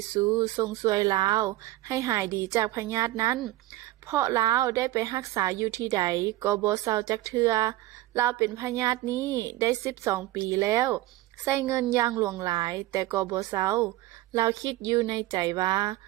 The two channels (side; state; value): left; quieter; 16.7 dB